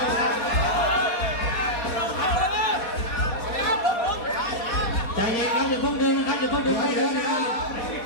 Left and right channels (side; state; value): right; late; 4.2 ms